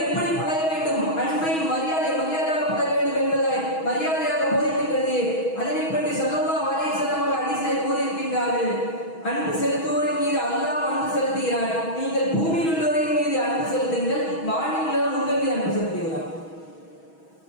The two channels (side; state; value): right; late; 6.2 ms